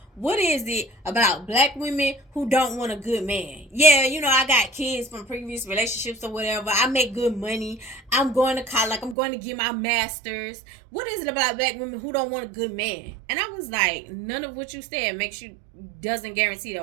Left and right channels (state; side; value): drops out; left; at 9.2 s